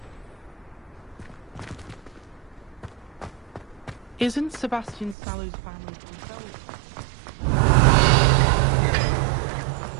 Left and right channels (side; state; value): left; drops out; at 5.2 s